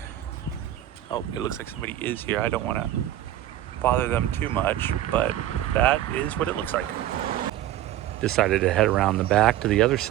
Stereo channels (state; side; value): quieter; left; 13.1 dB